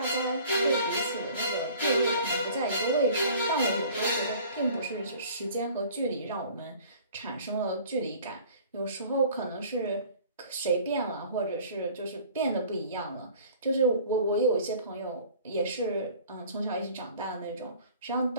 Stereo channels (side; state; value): both; inverted; correlation -0.48